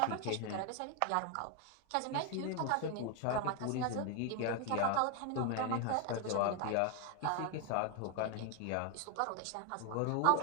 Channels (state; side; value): different; both; correlation 0.01